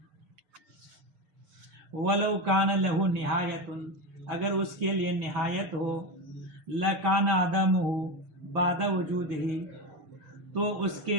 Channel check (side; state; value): left; late; 6.6 ms